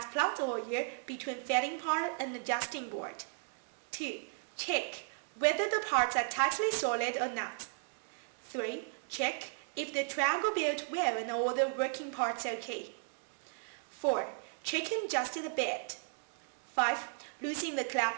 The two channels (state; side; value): silent; left; digital silence